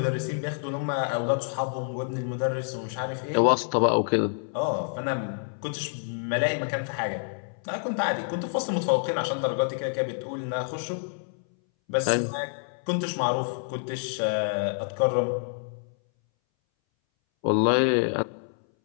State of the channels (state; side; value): silent; right; 60 dB below the other